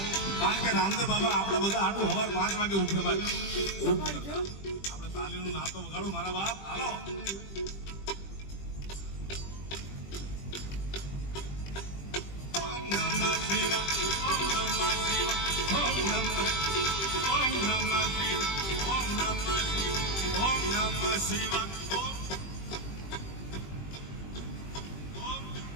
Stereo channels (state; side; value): late; right; 20 ms